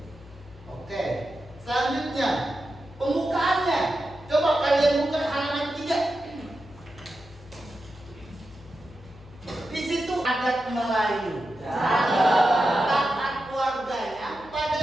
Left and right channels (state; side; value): noise; left; hum, 22 dB below the sound